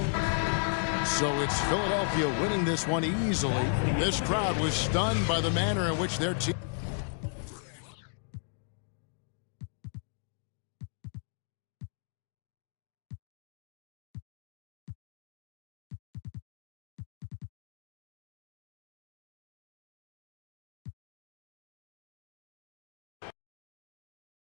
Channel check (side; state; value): right; silent; digital silence